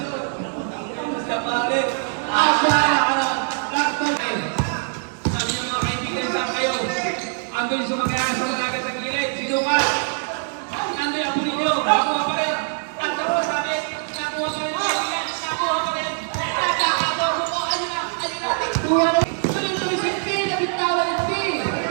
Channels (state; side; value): silent; left; digital silence